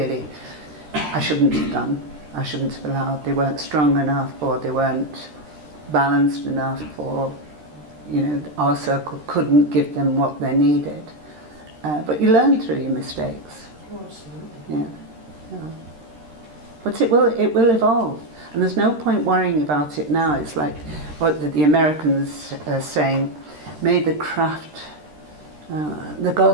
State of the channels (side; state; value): left; late; 13 ms